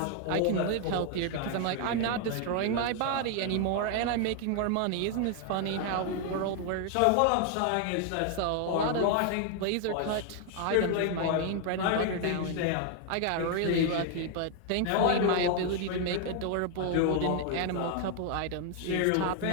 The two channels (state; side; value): different; both; correlation 0.00